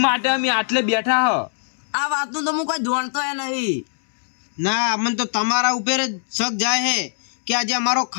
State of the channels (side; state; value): right; silent; digital silence